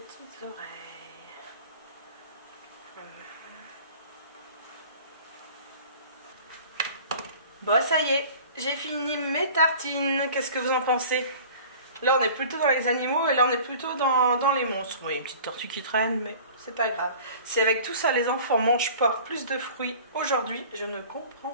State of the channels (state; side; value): inverted; both; correlation -0.44